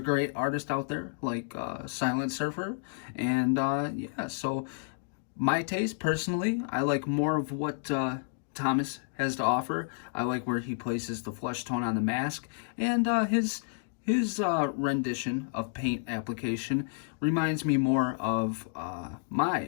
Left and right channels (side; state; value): right; silent; digital silence